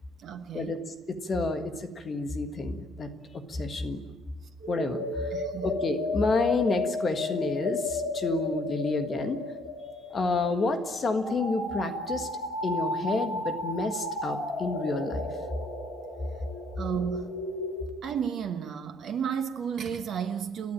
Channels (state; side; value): normal; both; correlation 0.64